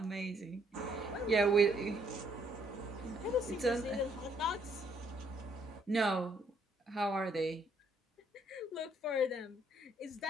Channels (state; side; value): normal; both; correlation 0.68